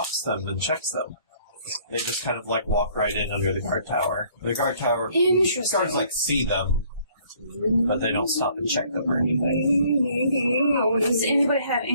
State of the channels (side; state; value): both; inverted; correlation -0.60